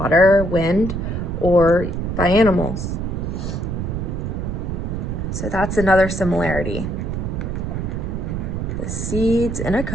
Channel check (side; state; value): right; noise; rumble, 3 dB below the sound